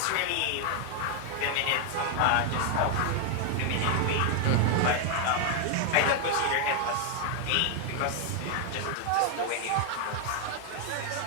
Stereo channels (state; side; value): different; both; correlation 0.00